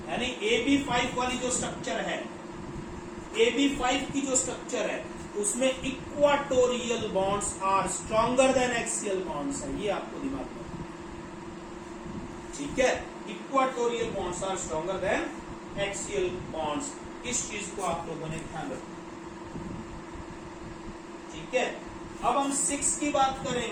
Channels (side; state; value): both; identical; correlation 1.00